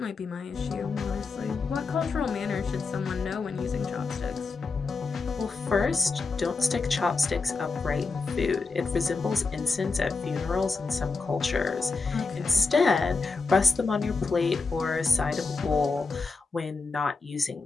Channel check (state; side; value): quieter; right; 4.2 dB